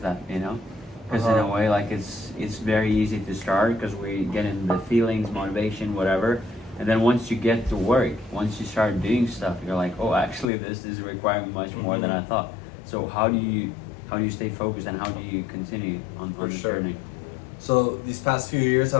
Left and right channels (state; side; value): drops out; right; at 10.5 s